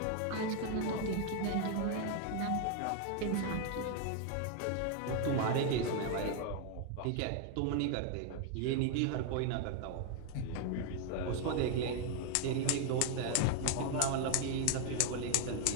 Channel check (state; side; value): different; both; correlation 0.00